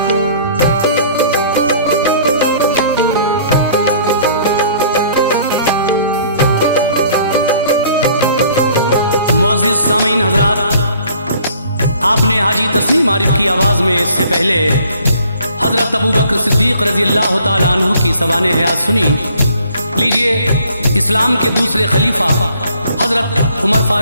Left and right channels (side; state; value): both; inverted; correlation -0.57